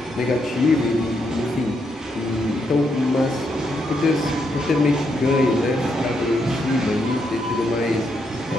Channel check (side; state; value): both; normal; correlation 0.79